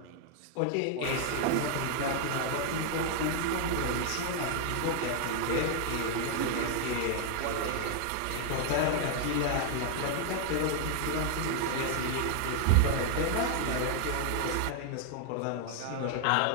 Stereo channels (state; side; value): different; both; correlation 0.00